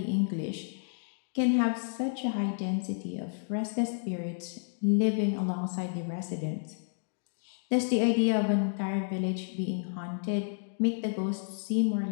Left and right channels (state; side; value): silent; right; digital silence